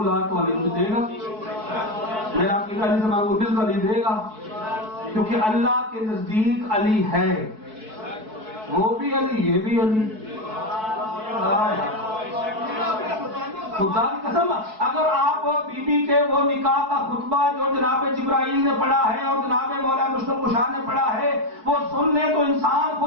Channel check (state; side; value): late; left; 4.6 ms